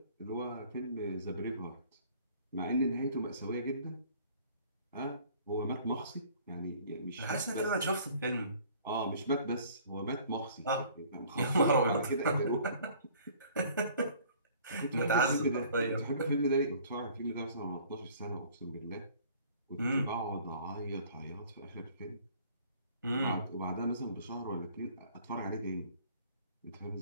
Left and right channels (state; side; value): inverted; both; correlation -0.53